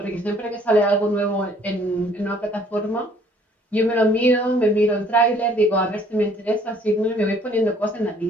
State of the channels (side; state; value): both; normal; correlation 0.59